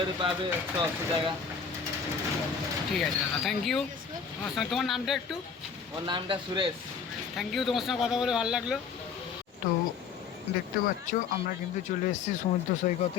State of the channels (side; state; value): right; quieter; 6.1 dB